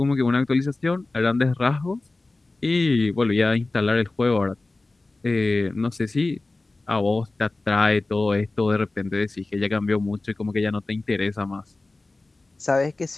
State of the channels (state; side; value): quieter; right; 3.2 dB